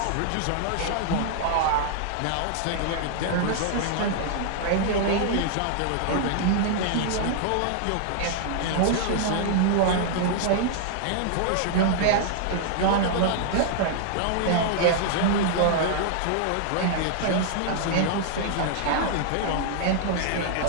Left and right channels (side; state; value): both; different; correlation -0.01